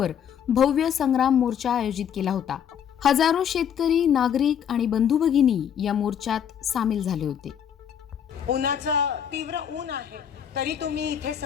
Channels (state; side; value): quieter; right; 8.6 dB